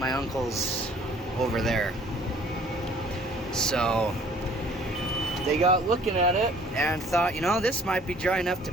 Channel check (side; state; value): both; normal; correlation 0.55